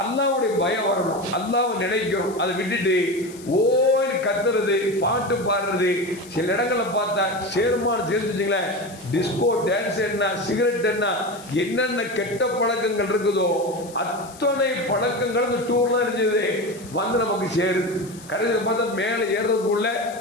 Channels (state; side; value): noise; left; hiss, 19 dB below the sound